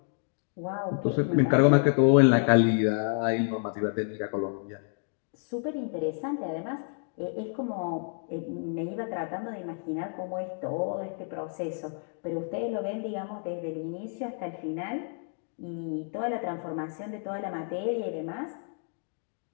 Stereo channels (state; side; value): silent; right; 58 dB below the other